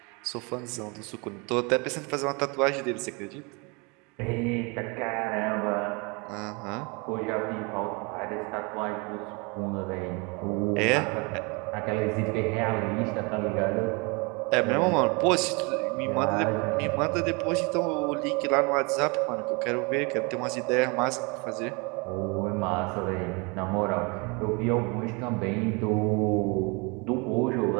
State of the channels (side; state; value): left; quieter; 29.9 dB